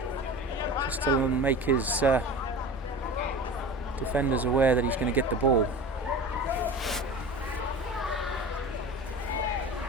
just to make his defenders aware that he's going to get the ball.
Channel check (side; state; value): both; normal; correlation 0.34